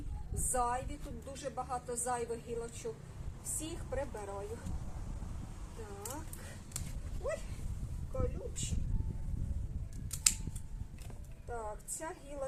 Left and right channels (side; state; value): both; identical; correlation 1.00